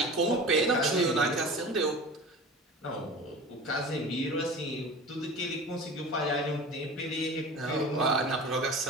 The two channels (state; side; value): normal; both; correlation 0.35